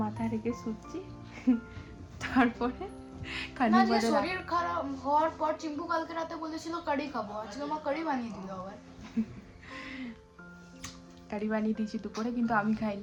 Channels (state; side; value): identical; both; correlation 1.00